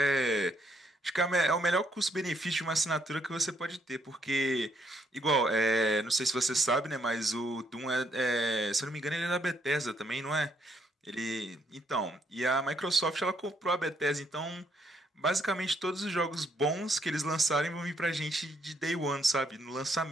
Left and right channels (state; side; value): normal; both; correlation 0.72